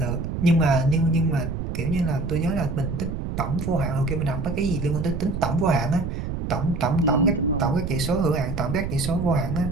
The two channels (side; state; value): right; noise; rumble, 4 dB below the sound